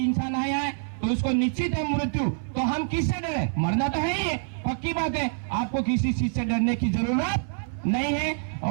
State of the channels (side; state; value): left; silent; 61 dB below the other